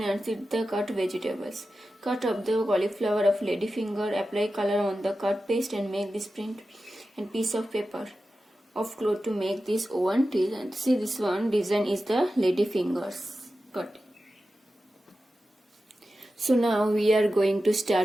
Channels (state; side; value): normal; both; correlation 0.93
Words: and sit the cut vegetables. Cut up the cauliflower of ladyfinger, apply color on the cut paste and make this print and piece of paper of cloth to make this one design. See this one design is the ladyfingers cut. So now we are going to